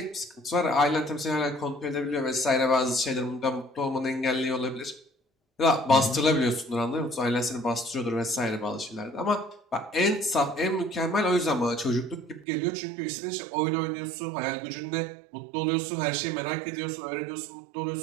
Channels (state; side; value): drops out; left; at 12.5 s